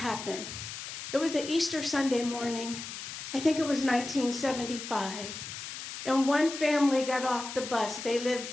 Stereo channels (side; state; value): left; noise; hiss, 9 dB below the sound